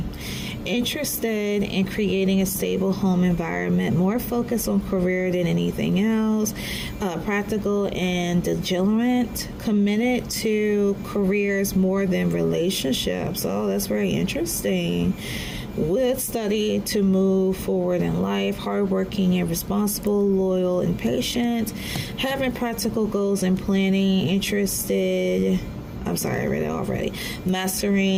Interested in creating a stable home environment, more focused on career than anything else, practical and diligent, committed to careers more than relationships. Oh, that's very interesting. Would study to move forward in life, hardworking and responsible, loyal and patient, having practical goals and planning, I read it already.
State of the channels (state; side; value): identical; both; correlation 1.00